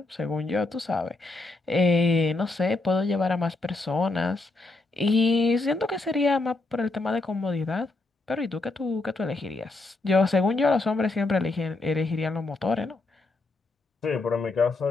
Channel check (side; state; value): right; quieter; 3.2 dB